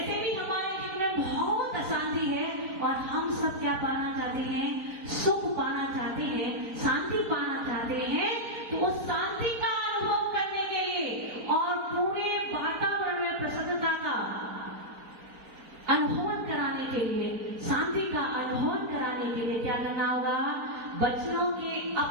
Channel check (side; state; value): left; late; 4.4 ms